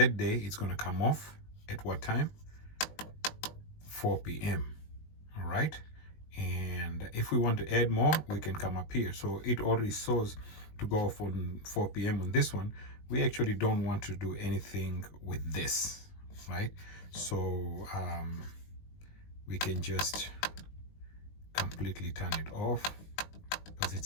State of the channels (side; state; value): right; late; 19 ms